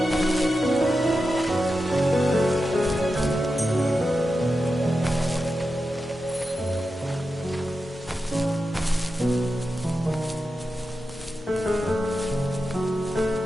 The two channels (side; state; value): both; normal; correlation 0.90